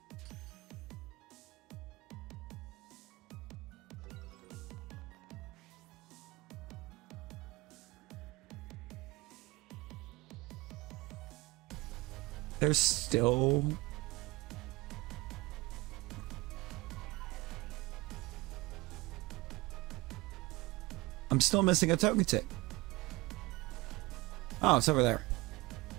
There's still... I'm still missing a token tick. Oh, it's over there.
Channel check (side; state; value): left; quieter; 22.3 dB